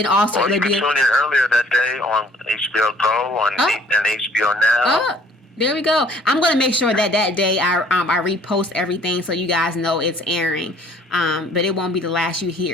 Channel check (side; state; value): both; normal; correlation 0.58